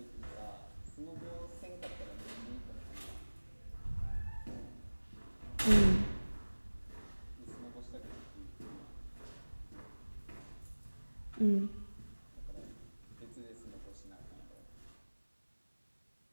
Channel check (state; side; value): inverted; both; correlation -1.00